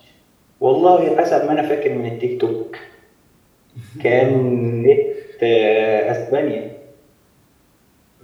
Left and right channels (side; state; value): both; identical; correlation 1.00